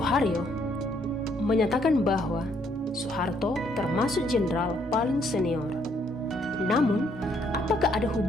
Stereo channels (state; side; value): normal; both; correlation 0.69